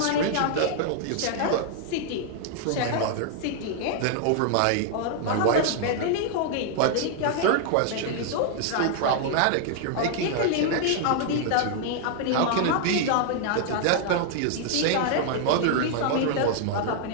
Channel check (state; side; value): different; both; correlation -0.01